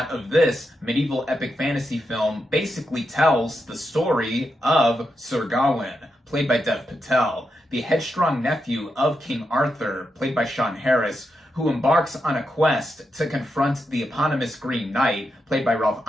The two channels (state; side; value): normal; both; correlation 0.85